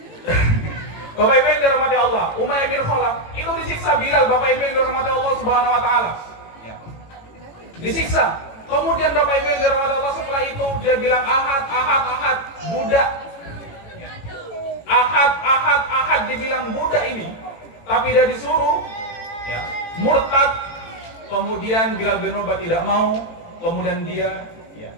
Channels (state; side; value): late; right; 18 ms